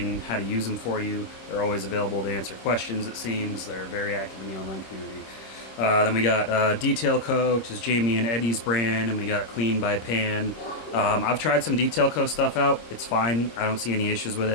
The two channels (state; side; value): late; right; 26 ms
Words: how to use them for you. They're always available to answer questions, it seems. They're very active in the online community. Then we got Detail Co., which is Jamie and Eddie's brand, and we got Clean by Pan. I've tried some Detail Co. stuff out. It's fine. I don't see any issues with